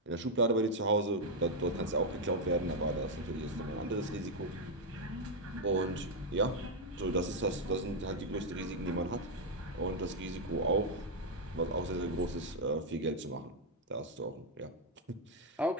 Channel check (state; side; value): normal; both; correlation 0.00